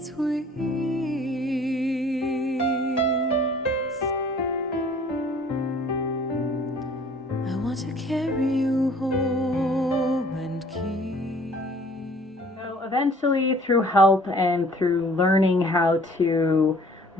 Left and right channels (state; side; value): normal; both; correlation 0.53